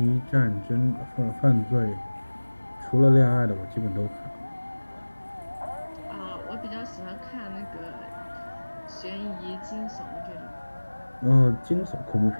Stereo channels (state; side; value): inverted; both; correlation -1.00